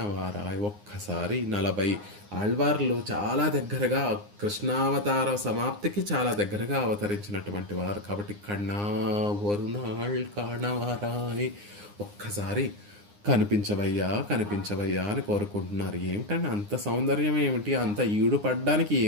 ఒక్కసారి 40 ఆళ్వార్లు చాలా దగ్గరగా కృష్ణావతార సమాప్తికి చాలా దగ్గరగా అవతరించినటువంటి వారు. కాబట్టి కన్నా ఒరునాళ్ కాణవారాయ్, ఒక్కసారి కనిపించవయ్యా అని కోరుకుంటున్నారు. ఏమిటంటే అంత సౌందర్యం ఏమిటి, అంత ఈడు పడ్డానికి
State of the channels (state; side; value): late; left; 9.7 ms